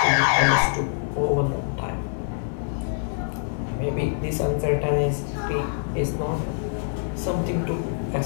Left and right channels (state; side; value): silent; right; digital silence